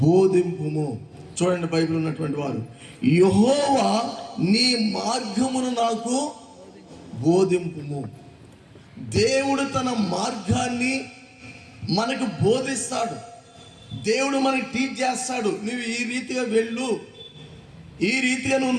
బోధింపుము. చూడండి, బైబిల్ ఉన్నటువంటి వారు, యెహోవా నీ మార్గమును నాకు బోధింపుము. దేవుడు తన మార్గాన్ని మనకు బోధిస్తాడు. దేవుడు మనకి టీచ్ చేస్తాడు. నువ్వు ఈ రీతిగా వెళ్ళు, ఈ రీతిగా నువ్వు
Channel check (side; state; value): both; identical; correlation 1.00